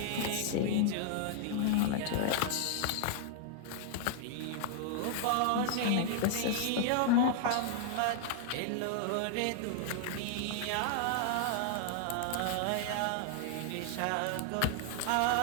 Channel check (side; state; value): both; different; correlation 0.00